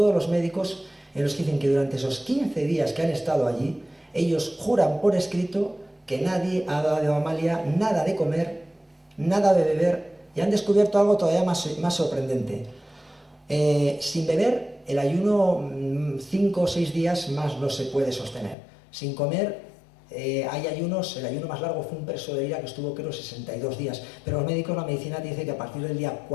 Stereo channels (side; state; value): right; drops out; at 18.6 s